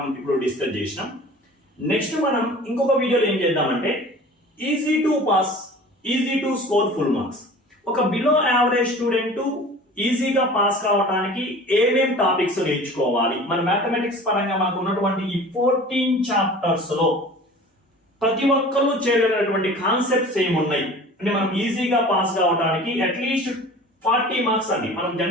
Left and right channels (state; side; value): normal; both; correlation 0.42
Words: ఇప్పుడు డిస్కస్ చేసినాం. నెక్స్ట్ మనం ఇంకొక వీడియోలో ఏం చేద్దామంటే easy to pass, easy to score full marks. ఒక బిలో యావరేజ్ స్టూడెంట్ ఈజీగా పాస్ కావడానికి ఏమేం టాపిక్స్ నేర్చుకోవాలి, మన మ్యాథమెటిక్స్ పరంగా మనకు ఉన్నటువంటి ఈ 14 చాప్టర్స్ లో ప్రతి ఒక్కరు చేయగలిగినటువంటి కాన్సెప్ట్స్ ఏమున్నాయి అంటే మనం ఈజీగా పాస్ కావడానికి అట్లీస్ట్ 40 మార్క్స్ అండి. మనం